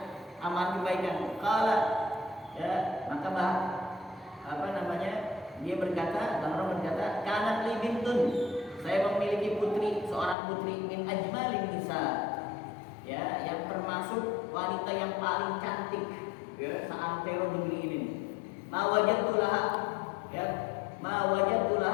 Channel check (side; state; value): right; drops out; at 10.4 s